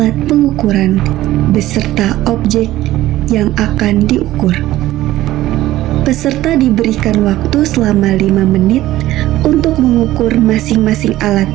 pengukuran beserta objek yang akan diukur. Peserta diberikan waktu selama 5 menit untuk mengukur masing-masing alat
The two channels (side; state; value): left; quieter; 15.3 dB